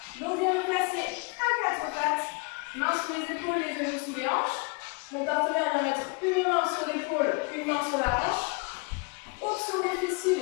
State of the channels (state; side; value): quieter; right; 31.2 dB